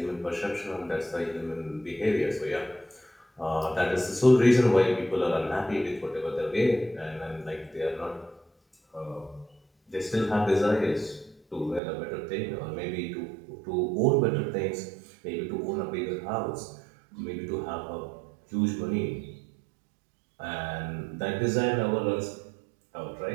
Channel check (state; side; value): drops out; left; at 11.8 s